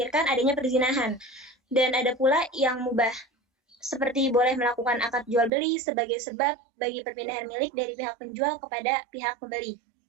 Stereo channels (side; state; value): left; drops out; at 5.5 s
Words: adanya perzinahan. Dan ada pula yang mubah, seperti boleh melakukan akad jual beli sebagai sebab bagi perpindahan milik dari pihak penjual kepada pihak pembeli.